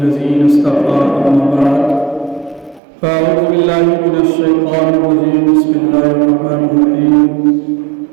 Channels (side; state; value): left; drops out; at 2.8 s